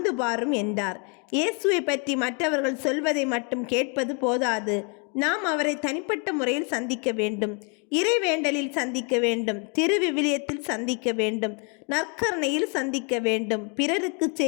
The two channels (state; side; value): quieter; right; 36.2 dB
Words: பாரும் என்றார். இயேசுவை பற்றி மற்றவர்கள் சொல்வதை மட்டும் கேட்பது போதாது. நாம் அவரை தனிப்பட்ட முறையில் சந்திக்க வேண்டும். இறைவேண்டலில் சந்திக்க வேண்டும். திருவிவிலியத்தில் சந்திக்க வேண்டும். நற்கருணையில் சந்திக்க வேண்டும். பிறருக்கு